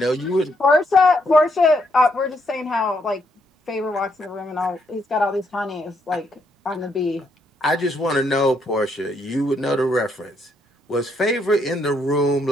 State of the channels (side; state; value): both; normal; correlation 0.74